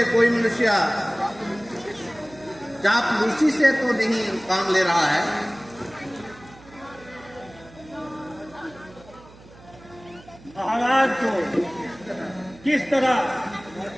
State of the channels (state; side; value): noise; right; hum, 22 dB below the sound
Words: कोई मनुष्य चापलूसी से तो नहीं काम ले रहा है? महाराज को किस तरह